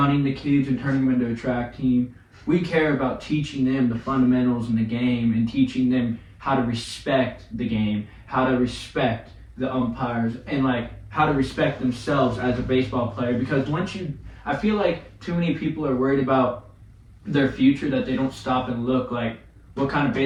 the kids and turning them into a track team. We care about teaching them the fundamentals in the game and teaching them how to respect the game, how to respect the umpires, and like how to respect themselves as a baseball player. Because I feel like too many people are worried about their future that they don't stop and look like, what kind of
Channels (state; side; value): identical; both; correlation 1.00